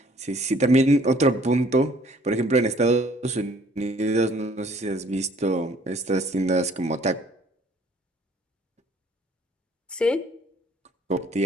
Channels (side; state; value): both; normal; correlation 0.58